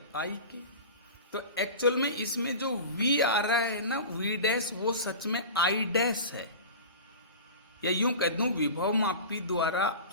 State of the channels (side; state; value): both; inverted; correlation -0.33